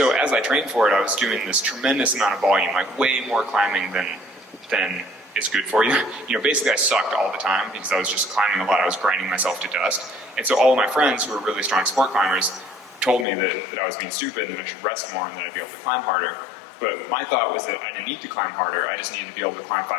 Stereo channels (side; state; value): right; drops out; at 13.2 s